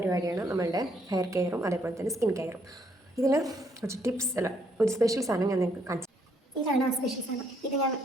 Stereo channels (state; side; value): normal; both; correlation 0.70